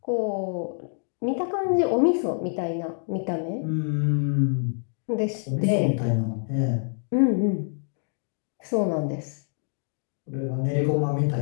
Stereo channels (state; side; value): silent; right; digital silence